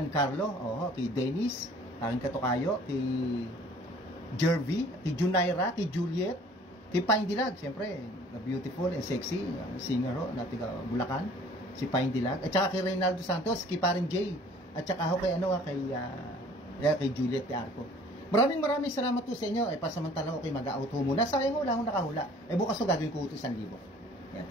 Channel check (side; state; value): both; normal; correlation 0.52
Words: kay Dennis, aking katukayo, kay Jervy, kay Junaira, kay Juliet, kay Pine Dilag, siyempre, beautiful and sexy singer ho, na tiga Bulacan, si Pine Dilag, at saka kay Reynaldo Santos, kay Paring Jay, at saka ho kay kay Juliet de Arco. Maraming salamat po sa inyo. Pasamantala ko kayo mag-out ho muna. Sayang ho, wala akong nakahula. Bukas ho gagawin ko ito 1,000.